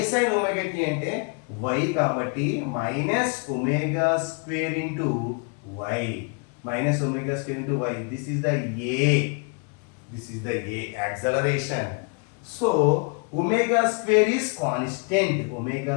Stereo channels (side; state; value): right; quieter; 35.5 dB